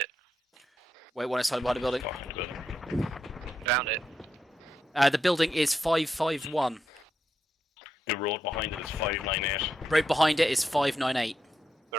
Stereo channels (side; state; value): both; normal; correlation 0.83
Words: Wait, one is hiding behind the building. Found it. The building is 551. The road behind it is 598. Road behind it is 598.